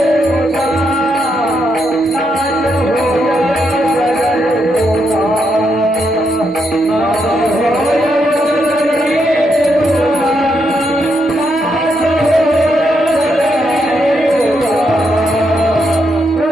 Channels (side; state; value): both; normal; correlation 0.80